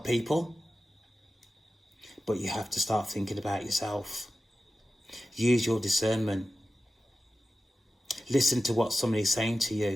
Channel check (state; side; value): normal; both; correlation 0.93